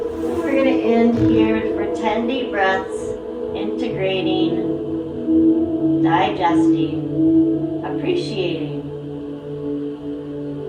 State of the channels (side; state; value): both; identical; correlation 1.00